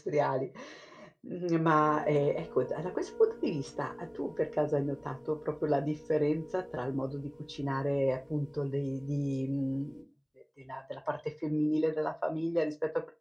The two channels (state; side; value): identical; both; correlation 1.00